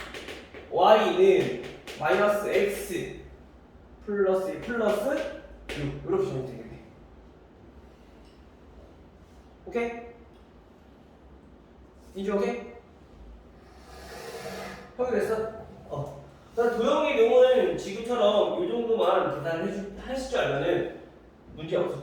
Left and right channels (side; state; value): both; identical; correlation 1.00